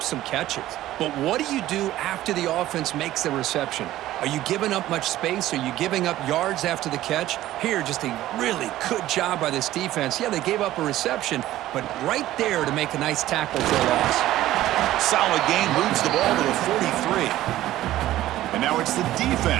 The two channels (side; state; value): left; quieter; 14.6 dB